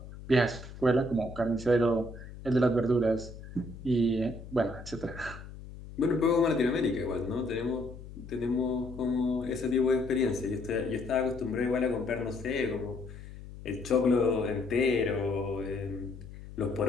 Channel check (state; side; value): noise; left; hum, 14 dB below the sound